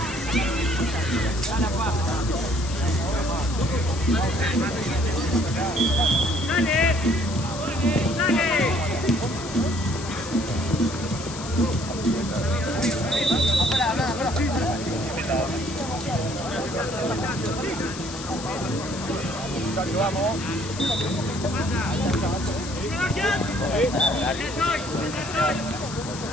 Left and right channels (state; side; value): noise; left; hiss, 11 dB below the sound